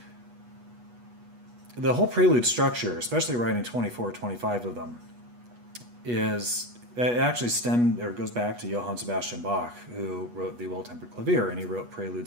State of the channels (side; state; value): left; late; 8.3 ms